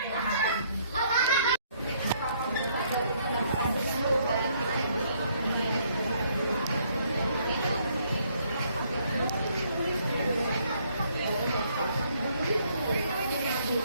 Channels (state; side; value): inverted; both; correlation -0.67